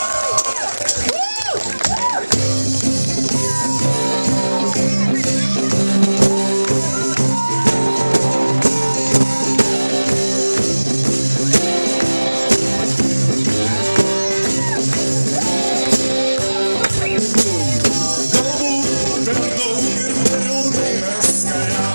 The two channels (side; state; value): both; inverted; correlation -1.00